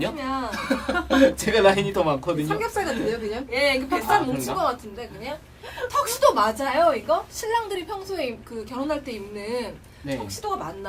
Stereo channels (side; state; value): both; identical; correlation 1.00